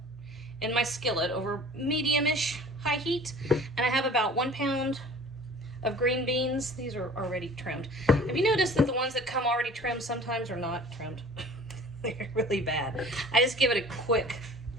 in my skillet over medium-ish high heat, and I have about 1 pound of green beans. These are already trimmed. Have you noticed that the ones that come already trimmed sometimes are not trimmed? They're really bad. I just give it a quick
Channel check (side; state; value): both; normal; correlation 0.46